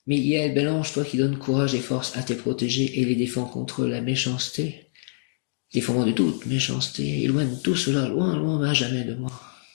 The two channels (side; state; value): right; silent; digital silence